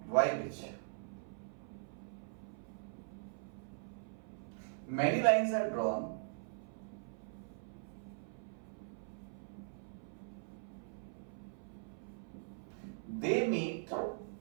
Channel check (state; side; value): silent; left; 50 dB below the other